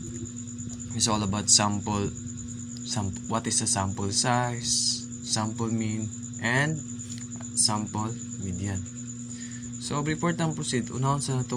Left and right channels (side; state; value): both; identical; correlation 1.00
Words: is all about what is a sample size, sample mean, and sample median. So before tang proceed, unahon sa